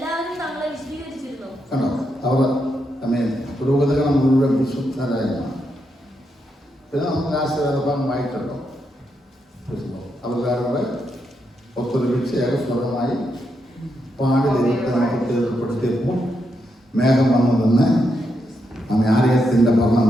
തങ്ങളെ വിശദീകരിച്ചിരുന്നു. അവർ പുരോഹിതകൾ മുഴുവൻ വിശുദ്ധരായിരുന്നു. പിന്നെ നമുക്ക് ആശീർവാദം വായിക്കട്ടോ. അവരുടെ ഒത്തൊരുമിച്ച് ഏകസ്വരമായി പാടി ദൈവത്തെ നമുക്ക് തീർപ്പെടുത്തിയപ്പോൾ മേഘം വന്നു നിന്ന് നമ്മെ ആലയത്തിൻ്റെ ഭരണം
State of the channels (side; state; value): both; normal; correlation 0.82